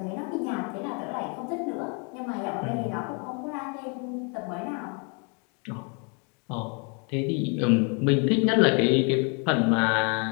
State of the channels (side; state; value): right; quieter; 36.2 dB